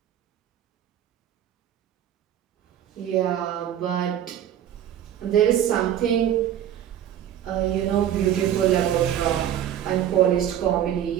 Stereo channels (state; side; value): quieter; left; 10.7 dB